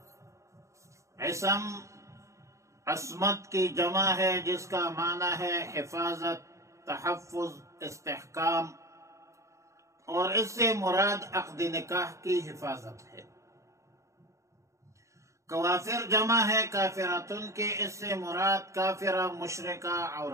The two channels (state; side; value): late; left; 0.14 ms